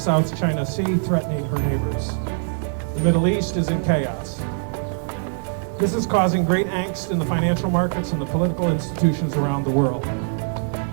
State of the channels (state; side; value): silent; left; 64 dB below the other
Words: China Sea, threatening her neighbors. The Middle East is in chaos. This is causing great angst in the financial markets and the political institutions around the world.